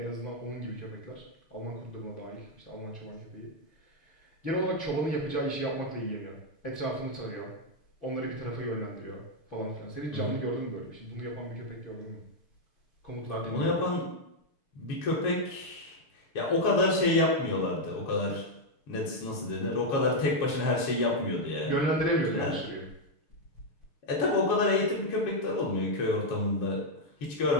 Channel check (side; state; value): right; late; 6.7 ms